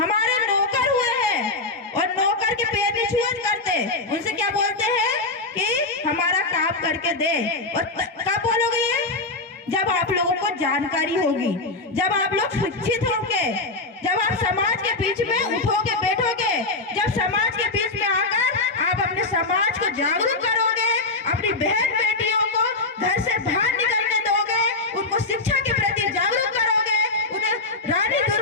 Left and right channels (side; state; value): right; quieter; 3.4 dB